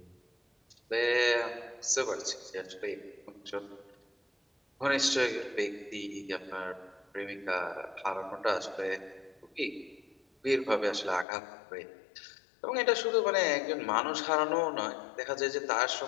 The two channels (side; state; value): right; drops out; at 11.2 s